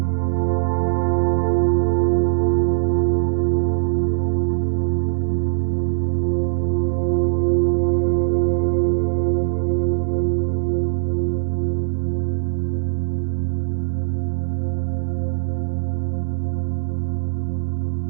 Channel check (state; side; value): silent; left; 65 dB below the other